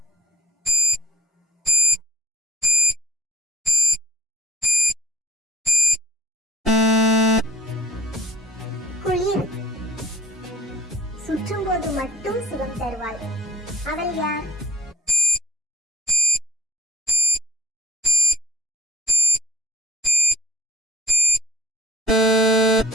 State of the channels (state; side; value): normal; both; correlation 0.63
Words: குளிர். சுற்றும் போது மட்டும் சுகம் தருவாள். அவள் யார்?